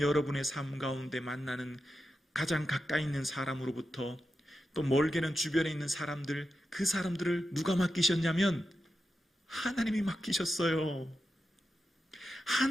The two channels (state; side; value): normal; both; correlation 0.89